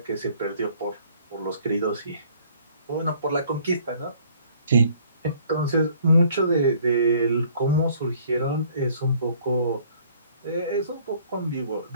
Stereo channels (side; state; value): both; inverted; correlation -0.58